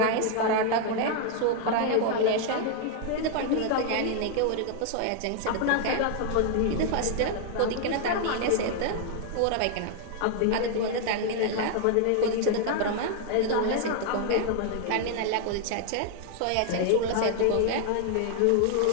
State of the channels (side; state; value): both; different; correlation 0.00